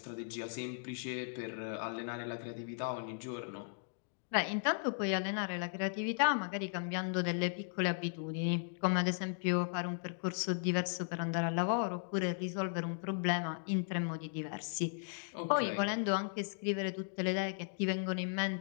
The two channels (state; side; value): silent; right; digital silence